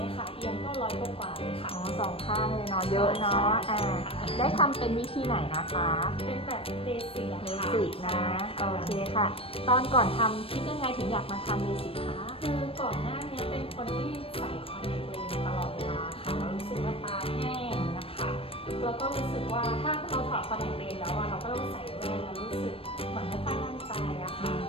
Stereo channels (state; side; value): late; right; 0.27 ms